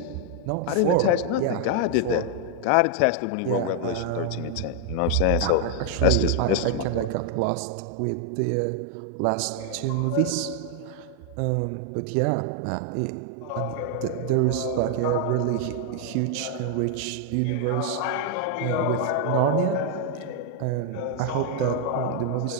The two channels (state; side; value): different; both; correlation 0.00